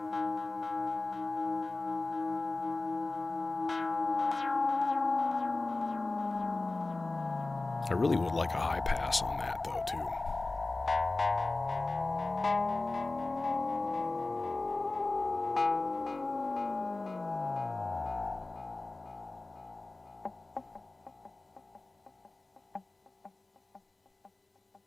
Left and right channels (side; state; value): right; quieter; 3.1 dB